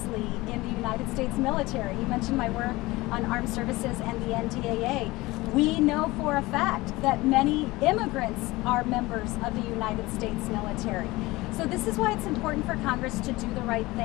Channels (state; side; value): quieter; right; 20.5 dB